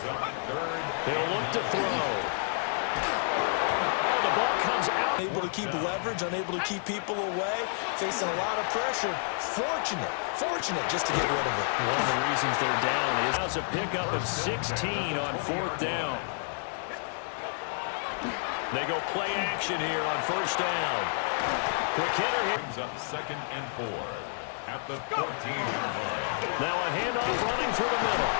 up 3rd. They'll look to throw. Oh, the ball comes out. Unable to keep leverage, unable to keep people away, facing a lot of pressure. Fortunate just to get rid of it. One of the reasons they're down is a pickup of 16 on 4th down. They go play action here on 1st down. Quick hitter here. Brings up 2nd and 4 at the 14-yard line. Now a handoff running through the middle.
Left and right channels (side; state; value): right; silent; digital silence